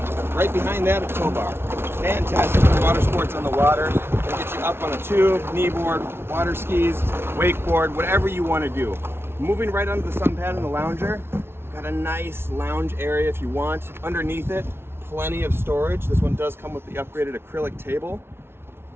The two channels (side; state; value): left; late; 0.12 ms